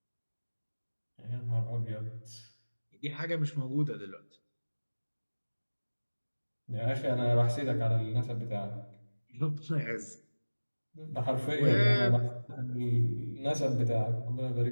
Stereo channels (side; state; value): both; inverted; correlation -1.00